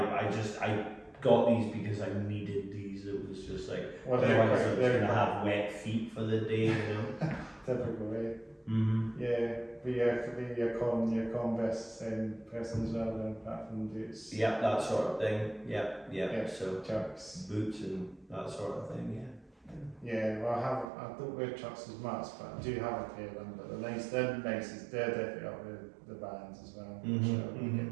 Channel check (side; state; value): left; drops out; at 20.9 s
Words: got these because I needed these. It was just like, otherwise I was going to have wet feet for the day, you know. Typical way. Mm-hmm. Yeah, but your Converse person as well, then apart from boots. Yeah, that sort of thing. Yeah. So chucks, boots and that sort of thing. Yeah. Yeah, well, I don't wear chucks as much, but I do have a pair of them. But they're nice. They're definitely up with the bands as well. Mm-hmm. So we get